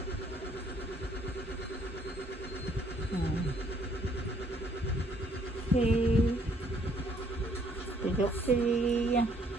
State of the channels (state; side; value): normal; both; correlation 0.64